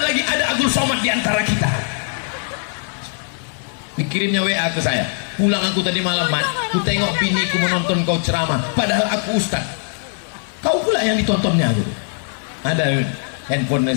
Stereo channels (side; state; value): right; silent; digital silence